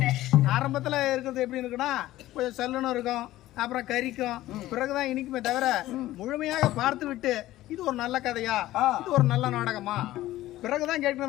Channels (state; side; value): quieter; right; 15.5 dB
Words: ஆரம்பத்துல இருக்கிறது எப்படி இருக்குன்னா கொஞ்சம் சல்லுன்னு இருக்கும், அப்புறம் கறிக்கும், பிறகுதான் இனிக்குமே தவிர முழுமையாக பார்த்து விட்டு இது ஒரு நல்ல கதையா, இது ஒரு நல்ல நாடகமா பிறகுதான்